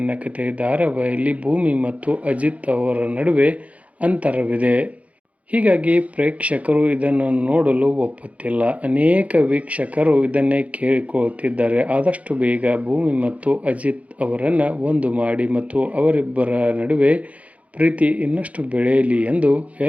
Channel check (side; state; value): left; late; 0.067 ms